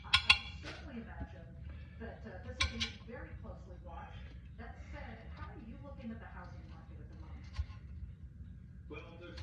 would certainly imagine that this will be very closely watched. That said, how are you looking at the housing market at the moment? Well, there's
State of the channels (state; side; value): identical; both; correlation 1.00